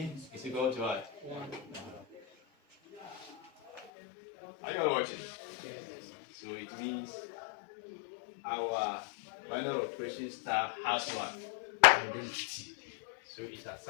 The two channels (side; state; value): right; drops out; at 3.9 s